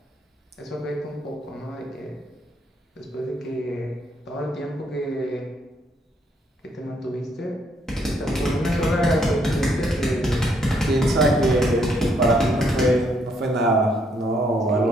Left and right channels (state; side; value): normal; both; correlation 0.72